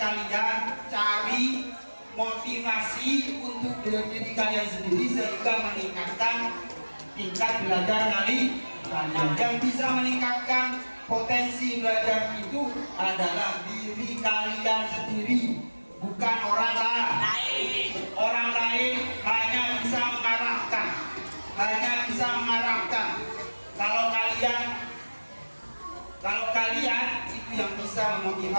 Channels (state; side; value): inverted; both; correlation -1.00